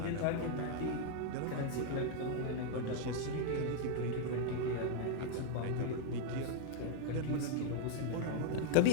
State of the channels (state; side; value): different; both; correlation 0.00